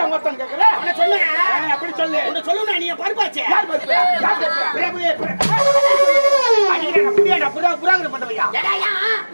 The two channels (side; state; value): both; inverted; correlation -1.00